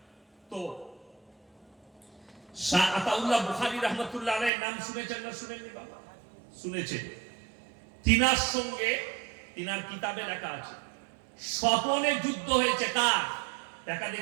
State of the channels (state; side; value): drops out; left; at 4.5 s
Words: তো শাহ আতাউল্লাহ বুখারী রাহমাতুল্লাহ আলাইহি নাম শুনেছেন না শুনেননি বাবা? শুনেছেন। তিনার সঙ্গে, তিনার কিতাবে লেখা আছে স্বপনে যুদ্ধ হয়েছে। কার? দেখা